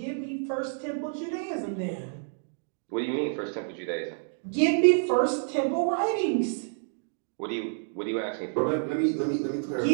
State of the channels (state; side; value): silent; left; digital silence